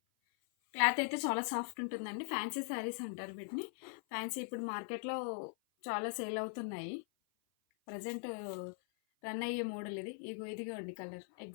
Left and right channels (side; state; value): right; silent; 51 dB below the other